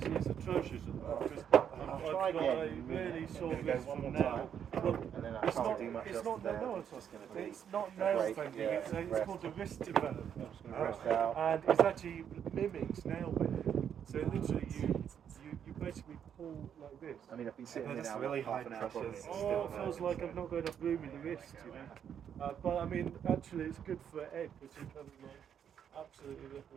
atrocious because try I've got a again. really sore Gonna go wrist one from more now. Look, And then I it's can't not. do much It's else not. there. No, It's just gonna be it's not a nail break, bending. yeah, It's rest. called a wrist development, Rest out. and it's actually mimics nail bending. So literally, you basically pull like this. I mean, I've been sitting They're here just now really half high an hour. pressures. probably. Oh, it feels like I've not got enough room in the wrist, you know. But I mean, actually, it's good for Ed because he kind of like absolutely look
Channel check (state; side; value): quieter; left; 8.6 dB